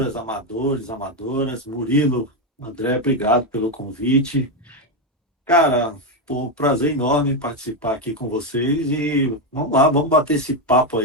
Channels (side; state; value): both; normal; correlation 0.07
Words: amadores, amadoras. Murilo, André, obrigado pelo convite. Cara, um prazer enorme participar aqui com vocês e vamos lá, vamos bater esse papo